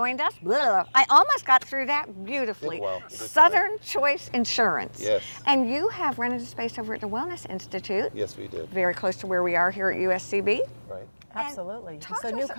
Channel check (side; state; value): both; inverted; correlation -1.00